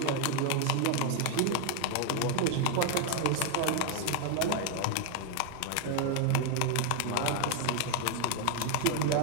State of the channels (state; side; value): different; both; correlation 0.01